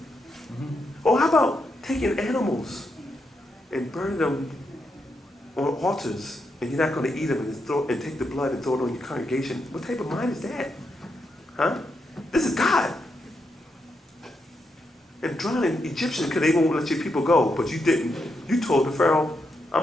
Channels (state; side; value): normal; both; correlation 0.83